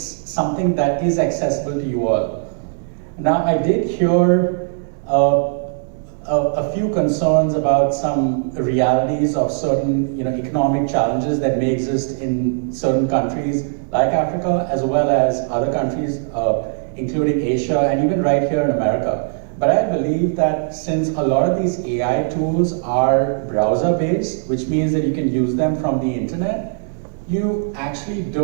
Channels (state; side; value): silent; left; digital silence